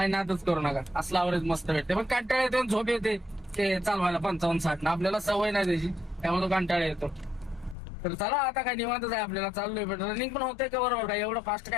नादच करू नका, असला आवरेज मस्त भेटते. पण कंटाळा येतो, झोप येते ते चालवायला 55, 60 ना. आपल्याला सवय नाही त्याची, त्यामुळे तो कंटाळा येतो. तर चला आता काय निवांतच आहे आपल्याला. चाललोय पण रनिंग पण होते का बरोबर. काय एवढं फास्ट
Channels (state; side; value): drops out; right; at 7.8 s